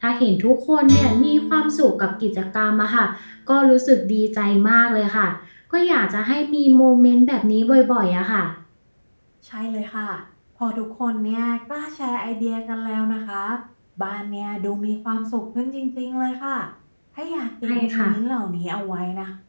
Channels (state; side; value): inverted; both; correlation -1.00